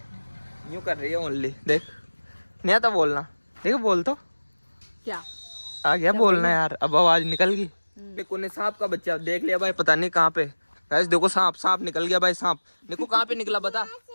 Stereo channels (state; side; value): inverted; both; correlation -1.00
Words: यूं कर रही है ओनली, देख नहीं आता बोलना। देखो बोल तो क्या आ गया बोलना यार, अब आवाज निकल गई। देखो ने सांप का बच्चा देख लिया भाई, पता नहीं कहाँ पे। गाइस देखो सांप, सांप निकल गया भाई। सांप देखो कहाँ पे निकला बता।